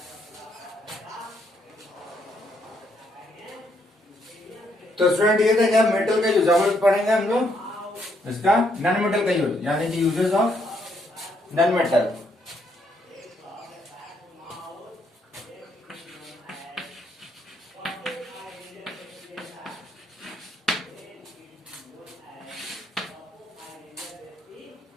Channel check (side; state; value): both; normal; correlation 0.73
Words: तो स्टूडेंट ये था क्या, मेटल का यूज हम लोग पढ़ेंगे हम लोग इसका नॉन मेटल का यूज, यानी कि uses of non metal.